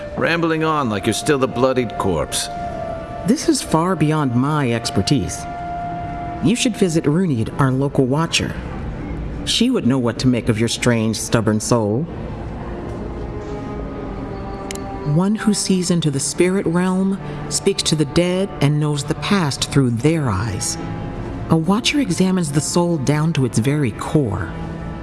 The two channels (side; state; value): both; identical; correlation 1.00